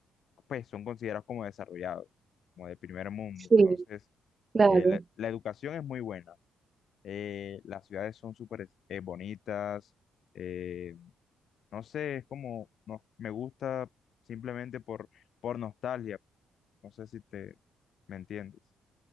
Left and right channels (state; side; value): normal; both; correlation 0.85